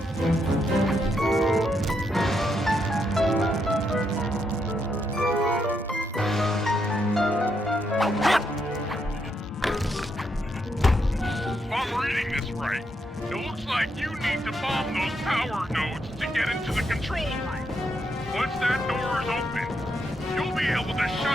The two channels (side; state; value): both; normal; correlation 0.79